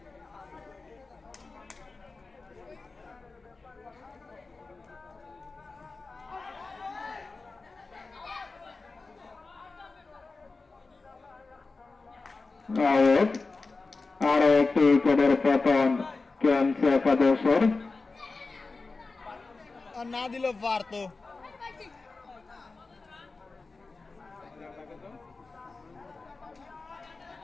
আরে একটু উপরের পতন কেমছে সদস্যর আর না দিলেও পারতো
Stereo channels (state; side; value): quieter; right; 3.8 dB